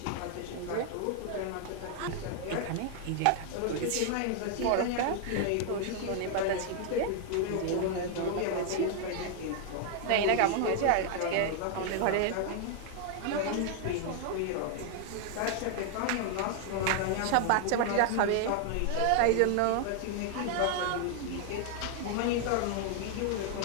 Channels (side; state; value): both; different; correlation 0.00